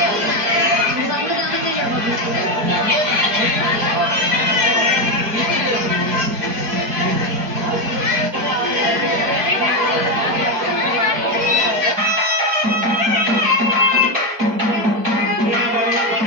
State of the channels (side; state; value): left; late; 4.7 ms